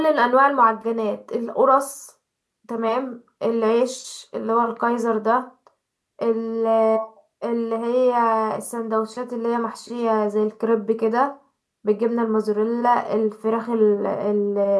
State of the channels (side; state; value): both; identical; correlation 1.00